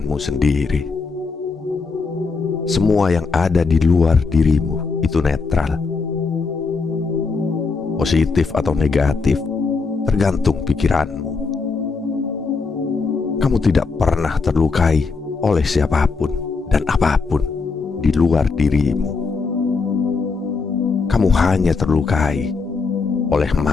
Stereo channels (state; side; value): quieter; right; 4.4 dB